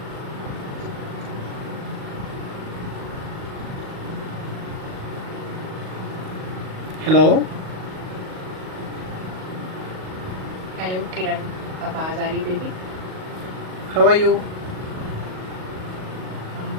Hello. Hello, Kiran. आवाज आ रही baby? How are you? I'm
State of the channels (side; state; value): left; late; 38 ms